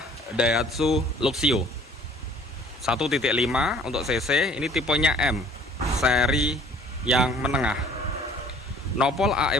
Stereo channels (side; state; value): both; normal; correlation 0.53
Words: Daihatsu Luxio 1.5 untuk cc. Ini tipenya M, seri yang menengah. Nopol AE